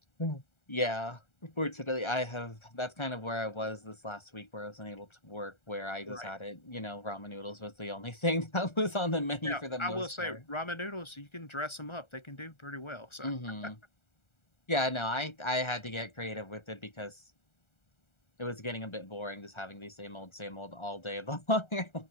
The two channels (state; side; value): late; right; 1.4 ms